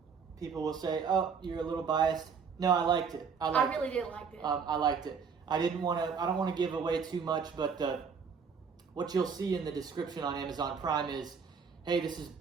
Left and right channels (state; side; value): quieter; left; 6.0 dB